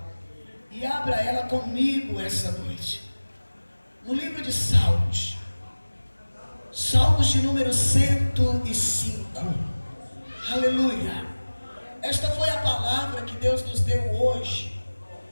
e abra ela comigo essa noite. No livro de Salmos. Salmos de número 105. Aleluia. Esta foi a palavra que Deus nos deu hoje,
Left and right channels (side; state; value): both; inverted; correlation -1.00